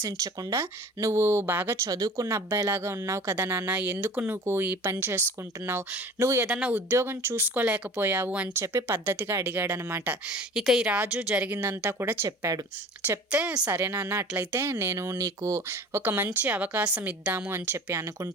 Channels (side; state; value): both; normal; correlation 0.42